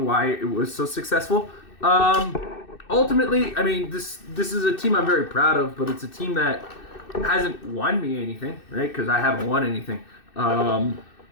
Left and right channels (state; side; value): late; right; 2.6 ms